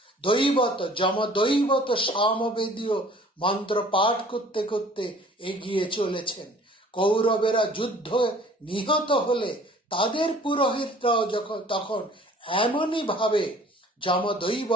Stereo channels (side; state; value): both; normal; correlation 0.52